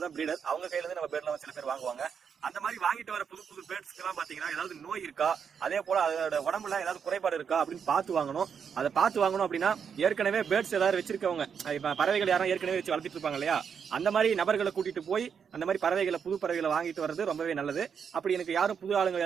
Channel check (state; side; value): quieter; left; 7.0 dB